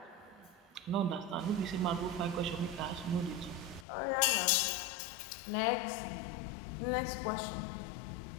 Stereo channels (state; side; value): drops out; right; at 3.9 s